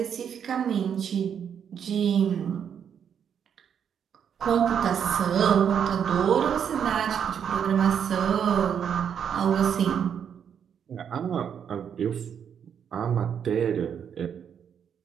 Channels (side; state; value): left; quieter; 8.1 dB